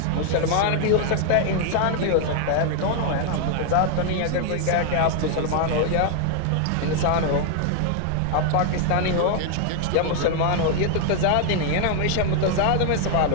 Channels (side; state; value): both; different; correlation 0.00